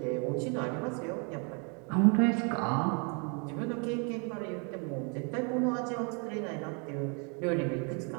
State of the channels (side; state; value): left; quieter; 35.5 dB